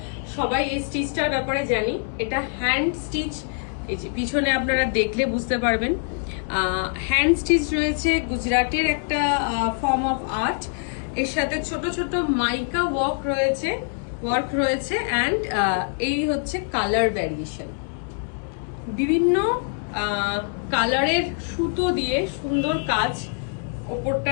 সবাই এই স্টিচটার ব্যাপারে জানি। এটা হ্যান্ড স্টিচ, এই যে পিছনে আপনারা দেখলে বুঝতে পারবেন হ্যান্ড স্টিচ রয়েছে, গুজরাটের একটা ফর্ম অফ আর্ট। এর সাথে ছোট ছোট মাইকা ওয়ার্ক রয়েছে অ্যান্ড এই হচ্ছে কালার ভ্যারিয়েশন। বিভিন্ন কালারের সুতো দিয়ে সুন্দর কাজ, ওপরটা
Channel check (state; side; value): silent; right; 60 dB below the other